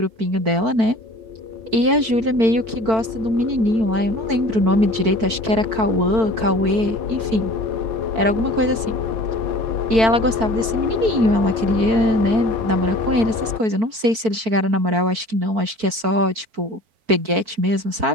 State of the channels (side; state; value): left; late; 4.5 ms